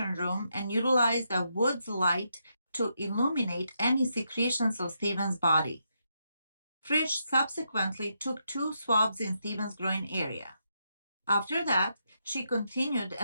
room and utilized a Woods light to illuminate any secretions of Stephen's body. Frisch subsequently took 2 swabs in Stephen's groin area. After that, she continued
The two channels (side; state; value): both; inverted; correlation -0.81